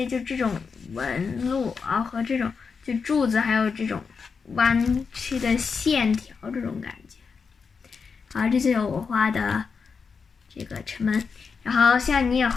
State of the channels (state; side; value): quieter; right; 5.5 dB